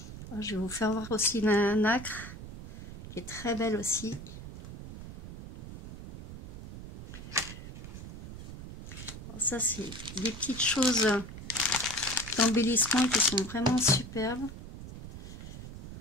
Alors, je vais vous faire voir aussi la nacre qui est très belle aussi. Alors ça, c'est des petites choses d'embellissement qui sont vraiment superbes.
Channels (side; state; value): right; noise; rumble, 12 dB below the sound